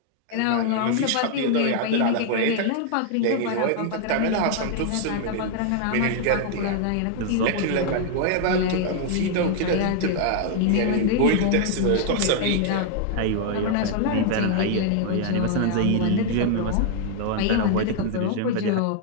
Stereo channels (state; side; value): different; both; correlation 0.00